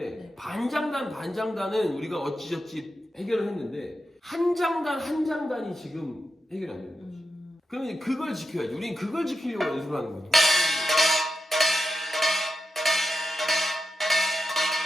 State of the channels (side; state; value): both; normal; correlation 0.88